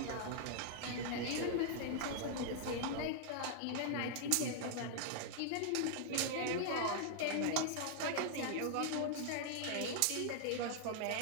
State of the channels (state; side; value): different; both; correlation -0.01